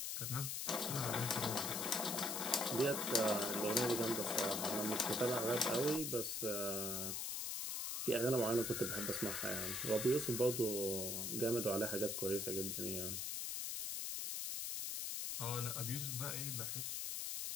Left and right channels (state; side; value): noise; left; hiss, 2 dB below the sound